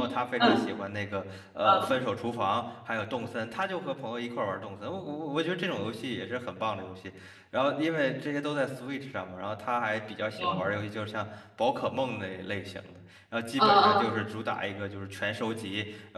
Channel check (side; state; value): both; identical; correlation 1.00